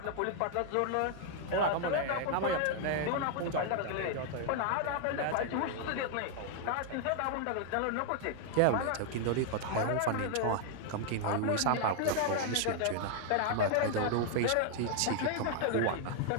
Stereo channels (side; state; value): both; different; correlation 0.00